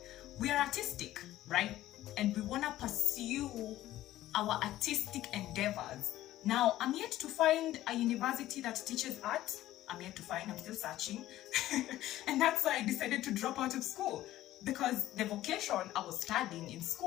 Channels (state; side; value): quieter; right; 14.5 dB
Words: we are artistic, right? And we want to pursue our artistic endeavors. Now, I'm yet to find a university that teaches art. I'm yet to find, I'm still searching. And that's why I decided to drop out of school, because the vocation I was studying in